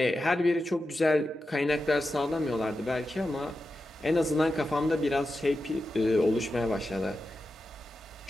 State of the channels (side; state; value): both; normal; correlation 0.90